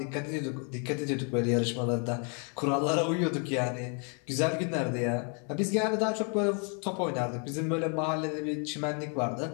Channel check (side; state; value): right; quieter; 38.8 dB